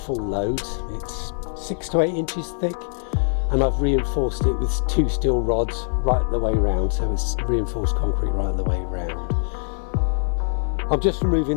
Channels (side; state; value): right; silent; 63 dB below the other